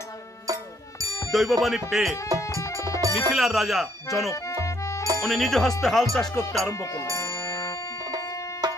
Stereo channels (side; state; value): both; normal; correlation 0.68